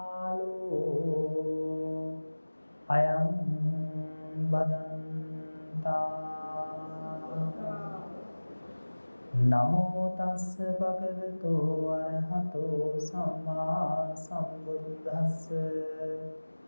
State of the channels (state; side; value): inverted; both; correlation -1.00